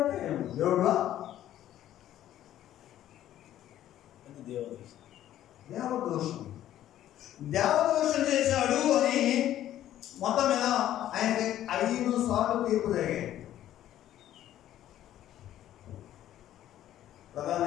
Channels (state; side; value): quieter; right; 12.4 dB